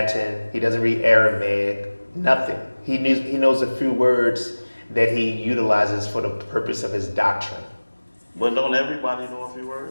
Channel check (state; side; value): inverted; both; correlation -1.00